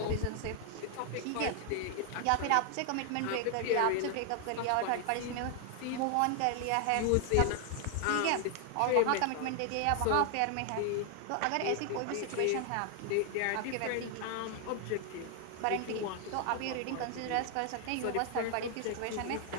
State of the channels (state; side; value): different; both; correlation 0.00